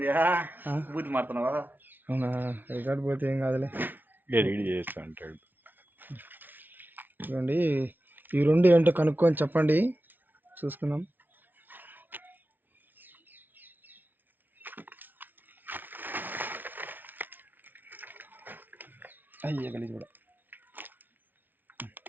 బూతి మారుతున్నావా? అవునా? రికార్డు పోతే ఏం కాదులే, ఎడిట్ చేస్తా అంటాడు. ఇవ్వండి ఈ రెండు ఏంటో కనుక్కొని చెప్పండి, చూసుకుందాం. అయ్యే గలీజ్ కూడా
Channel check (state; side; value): late; left; 0.088 ms